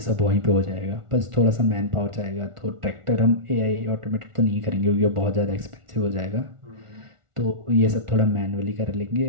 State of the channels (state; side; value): late; left; 1.4 ms